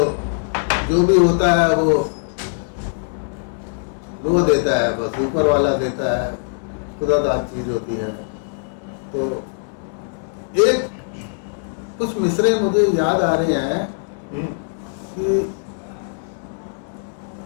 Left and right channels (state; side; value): silent; right; digital silence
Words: जो भी होता है वो देता है, बस ऊपर वाला देता है, खुदादाद चीज होती है। तो एक कुछ मिसरे मुझे याद आ रहे हैं कि